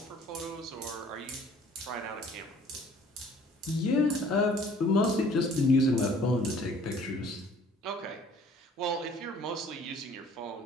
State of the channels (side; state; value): both; normal; correlation 0.54